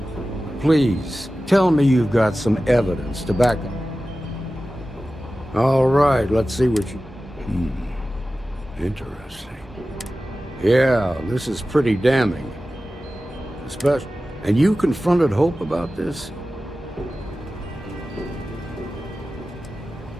Please, tell me you've got some evidence to back up. All right, let's see what you... Interesting. Yeah, this is pretty damning. Especially... And you confronted Hope about this?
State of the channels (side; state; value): both; normal; correlation 0.95